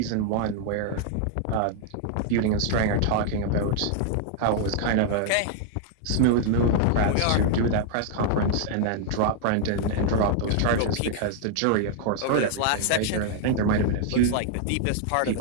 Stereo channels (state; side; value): different; both; correlation 0.00